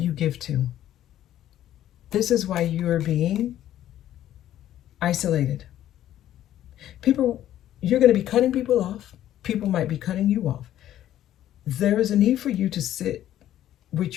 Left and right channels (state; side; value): quieter; right; 12.3 dB